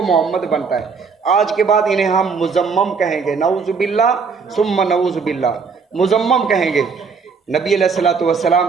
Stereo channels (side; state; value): left; quieter; 5.3 dB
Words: محمد بنتا ہے۔ آج کے بعد انہیں ہم مزمم کہیں گے، نعوذ باللہ ثم نعوذ باللہ، مزمم کہیں گے۔ نبی علیہ الصلوۃ والسلام